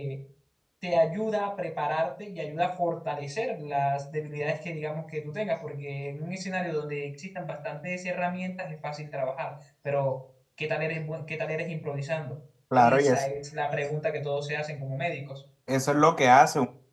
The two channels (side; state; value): both; identical; correlation 1.00